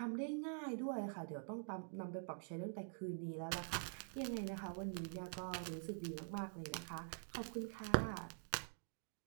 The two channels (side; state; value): left; silent; digital silence